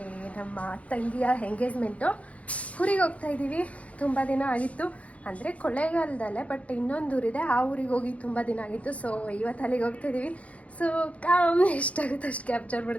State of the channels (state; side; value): late; right; 0.065 ms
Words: ನಮ್ಮ ತಂಗಿಯ ಎಂಗೇಜ್ಮೆಂಟು. ಊರಿಗೆ ಹೋಗ್ತಾ ಇದ್ದೀವಿ. ತುಂಬ ದಿನ ಆಗಿತ್ತು, ಅಂದರೆ ಕೊಳ್ಳೇಗಾಲದಲ್ಲೇ, ಬಟ್ ಇನ್ನೊಂದು ಊರಿದೆ, ಆ ಊರಿಗೆ ಹೋಗಿ ತುಂಬ ದಿನ ಆಗಿತ್ತು. ಸೊ ಇವತ್ತು ಅಲ್ಲಿಗೆ ಹೋಗ್ತಾ ಇದ್ದೀವಿ. ಸೊ ಕಮ್, ಎಷ್ಟಾಗುತ್ತೆ ಅಷ್ಟು ಕ್ಯಾಪ್ಚರ್